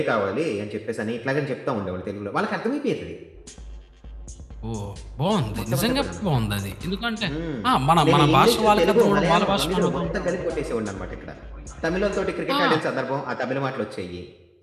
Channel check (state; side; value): identical; both; correlation 1.00